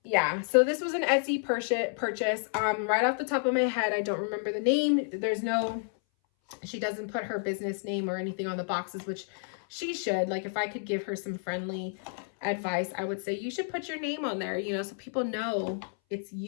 yeah, so this was an Etsy purchase. Right off the top of my head, I don't remember the name. She doesn't put her business name or anything on the boxes, which she should. Like, if I could give her some friendly advice, I would say you should put your name on there, so people know it's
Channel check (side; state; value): right; silent; 58 dB below the other